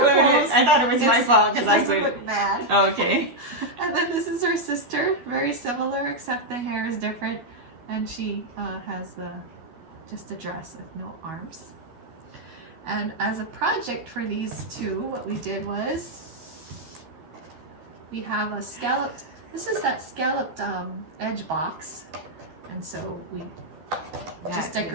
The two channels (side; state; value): left; late; 12 ms